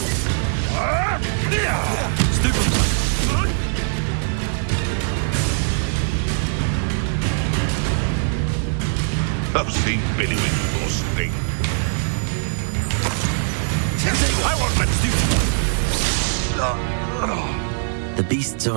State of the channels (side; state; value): left; silent; 65 dB below the other